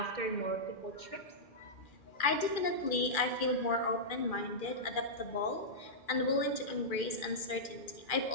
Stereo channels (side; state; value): right; late; 2.4 ms